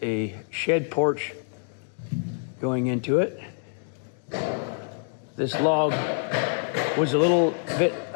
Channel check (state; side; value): silent; right; digital silence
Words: a shed porch going into it. This log was a little bit